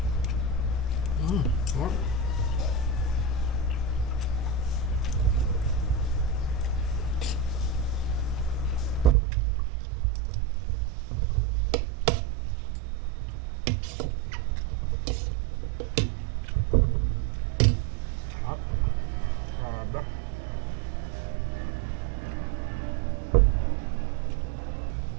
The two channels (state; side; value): drops out; left; at 9.2 s